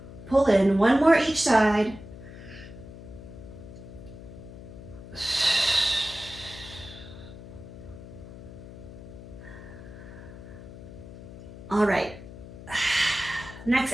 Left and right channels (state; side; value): noise; left; hum, 14 dB below the sound